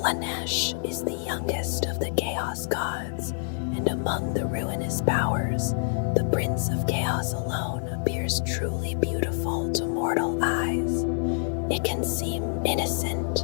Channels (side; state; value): right; silent; 60 dB below the other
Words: is the youngest of the Chaos Gods, and among the ruinous powers, the Prince of Chaos alone appears truly beautiful to mortal eyes. It can seem